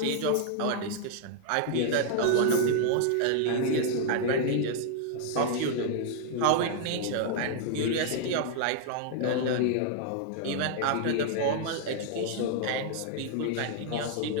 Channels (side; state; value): both; different; correlation 0.00